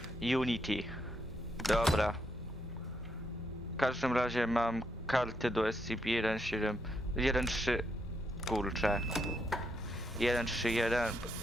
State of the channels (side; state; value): both; normal; correlation 0.78